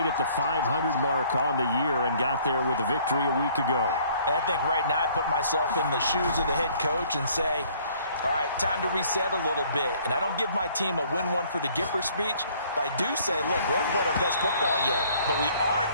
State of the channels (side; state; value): both; inverted; correlation -0.58